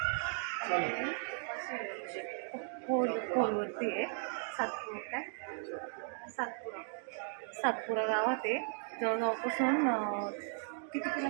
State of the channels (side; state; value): left; silent; 54 dB below the other